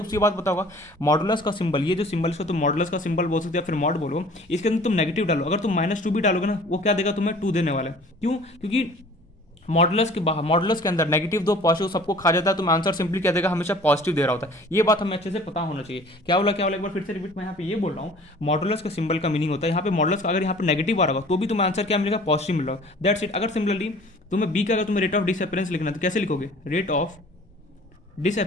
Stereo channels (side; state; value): both; normal; correlation 0.49